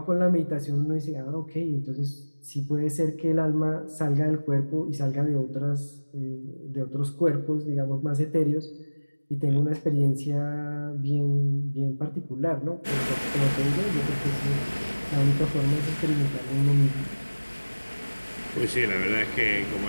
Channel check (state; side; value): inverted; both; correlation -1.00